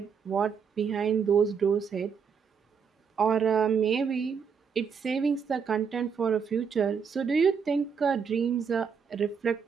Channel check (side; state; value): left; quieter; 6.4 dB